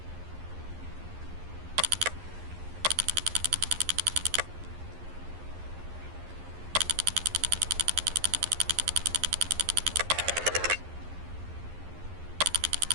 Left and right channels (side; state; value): left; late; 11 ms